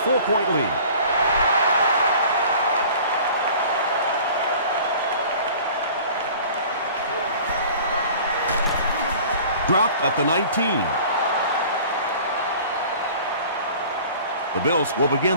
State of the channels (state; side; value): inverted; both; correlation -0.46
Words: lead. Dropped at the 19. The Bills will